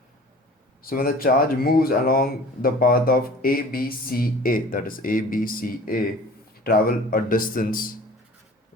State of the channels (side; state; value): both; normal; correlation 0.45